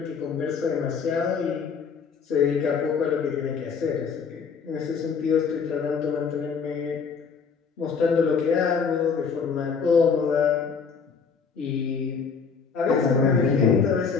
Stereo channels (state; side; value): quieter; right; 5.8 dB